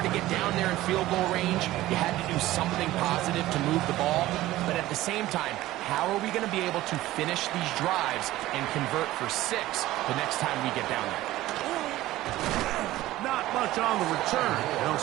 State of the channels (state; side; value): quieter; left; 16.2 dB